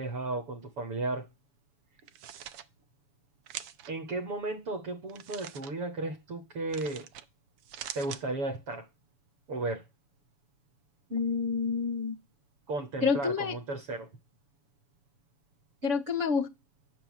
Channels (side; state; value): left; late; 7.1 ms